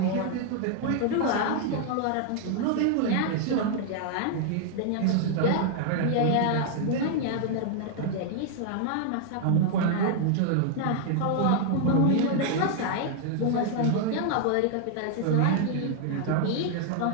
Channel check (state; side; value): different; both; correlation 0.00